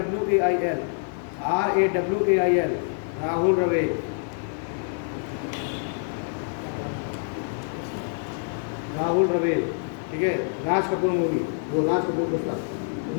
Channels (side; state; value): right; silent; 61 dB below the other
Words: RAWAIL, राहुल रवेल। राहुल रवेल, ठीक है। राज कपूर मूवी, वो राज कपूर पुस्तक।